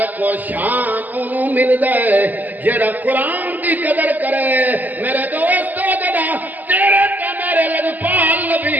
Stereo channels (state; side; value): late; left; 0.083 ms